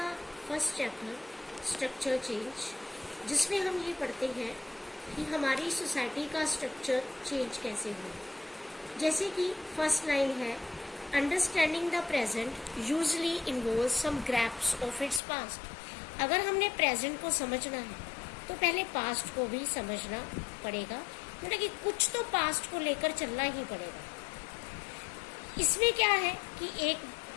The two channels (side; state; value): right; drops out; at 15.2 s